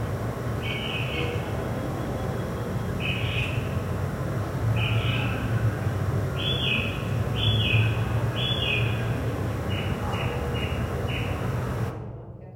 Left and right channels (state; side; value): identical; both; correlation 1.00